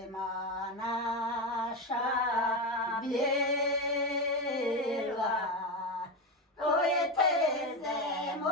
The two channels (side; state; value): both; normal; correlation 0.15